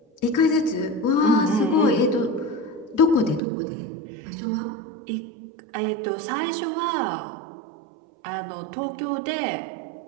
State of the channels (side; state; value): left; drops out; at 3.4 s